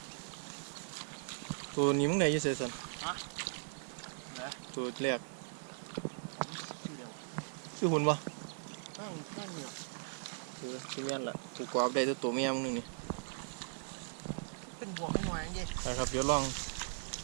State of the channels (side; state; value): left; silent; 52 dB below the other